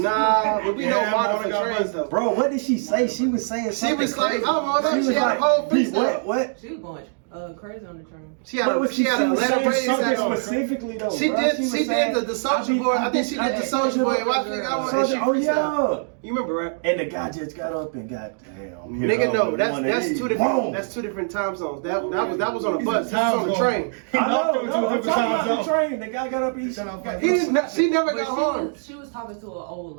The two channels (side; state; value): left; silent; digital silence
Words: but we know Yeah, Martyr Martyr for got trains buses. though. Bro, what did she say? She was saying She something was like, crazy. oh, no, She was she had a whole "Pete, freestyle." what? She was going crazy on the train. She had What a was she had a was letter saying raised something at her. specifically though. She bro. did. was She saying, did the Soju boy. I think she did the Soju boy. Watch it. Soju, oh yeah. You remember, right? And the guy just got up and got damn. Nigga, no, that's two different. That's two different time zones. That was on a bus. This was on the train. I know, He no, knocked I'm him to talking a about the different train. The guy got up and Shut up, He didn't. She never But got harmed. she was talking to an old